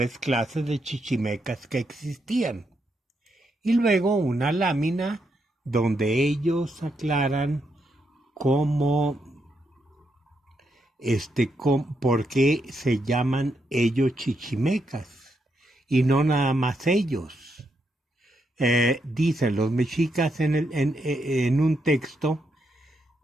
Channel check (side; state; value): both; normal; correlation 0.81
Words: clases de chichimecas que existían. Y luego una lámina donde ellos aclaran por qué se llaman ellos chichimecas y no nada más ellos. Dicen los mexicas en un texto,